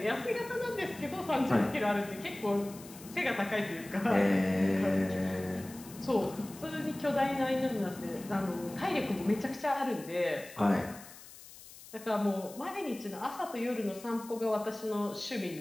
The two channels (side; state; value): left; noise; hiss, 18 dB below the sound